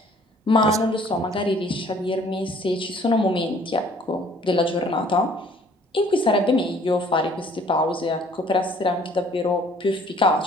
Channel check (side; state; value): both; normal; correlation 0.56